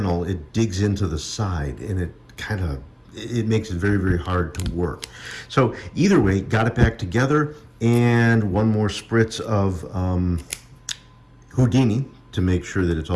it digs into the side and it makes it very, very hard to work. So either way, got it back together, and one more spritz of Houdini to make sure that it's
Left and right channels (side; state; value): both; identical; correlation 1.00